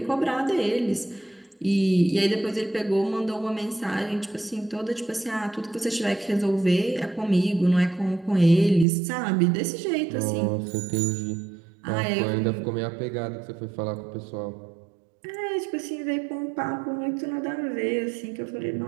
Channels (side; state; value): left; drops out; at 8.8 s